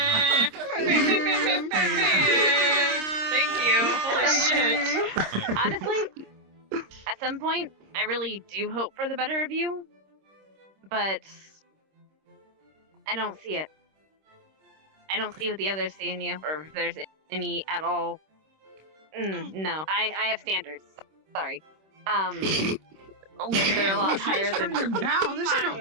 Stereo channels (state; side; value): late; left; 26 ms